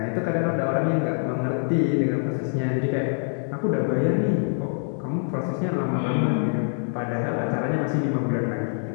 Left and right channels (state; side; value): silent; right; 62 dB below the other